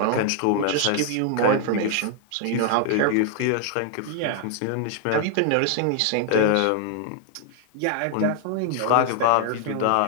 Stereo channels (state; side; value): different; both; correlation 0.00